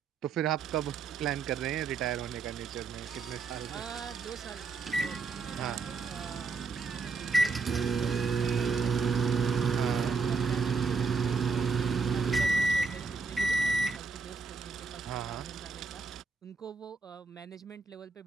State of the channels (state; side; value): quieter; left; 4.6 dB